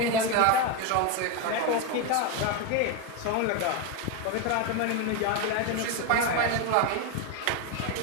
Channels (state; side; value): different; both; correlation 0.02